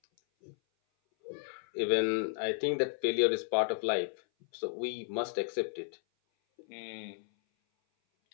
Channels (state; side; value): silent; right; 55 dB below the other